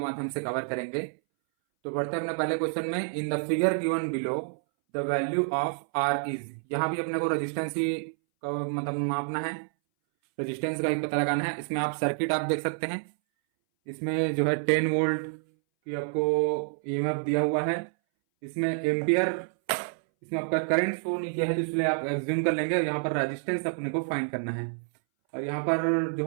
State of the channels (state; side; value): silent; left; 59 dB below the other